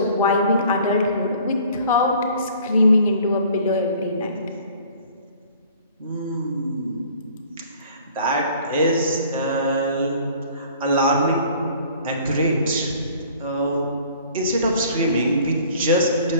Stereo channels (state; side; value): inverted; both; correlation -0.52